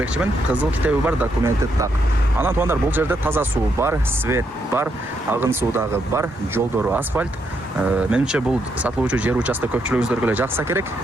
Кызыл китеби бар, документи так. Анан туғандар, бұл жерде таза суу бар, свет бар, агын суудагы бар, жолдору асфальт. Менимче бұл сатылуучу жер участок көпчүлүгүңүздөргө эле жакса керек.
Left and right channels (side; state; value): both; normal; correlation 0.78